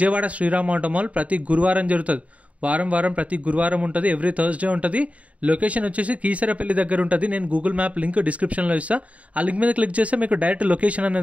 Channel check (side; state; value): left; late; 0.067 ms